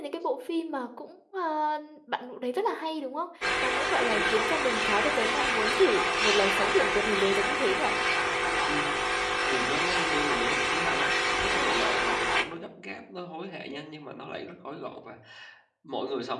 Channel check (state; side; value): identical; both; correlation 1.00